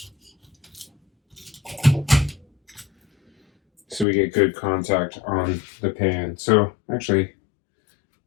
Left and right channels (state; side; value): drops out; right; at 4.0 s